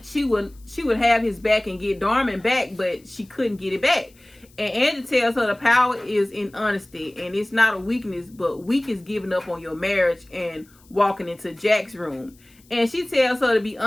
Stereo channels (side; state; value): left; noise; hiss, 29 dB below the sound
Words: she would have his back and get Darman back, but she couldn't get it back. And Angie tells her the power is in honesty, and it's not a weakness, but weak is giving up on your marriage and walking into Jack's room. And she tells her to be